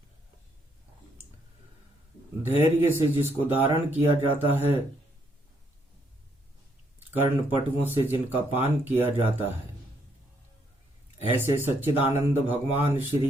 धैर्य से जिसको धारण किया जाता है, कर्णपटुओं से जिनका पान किया जाता है, ऐसे सच्चिदानंद भगवान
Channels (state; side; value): normal; both; correlation 0.73